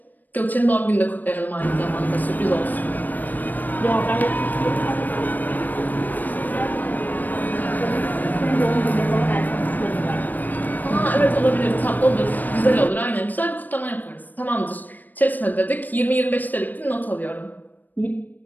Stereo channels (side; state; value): right; late; 0.086 ms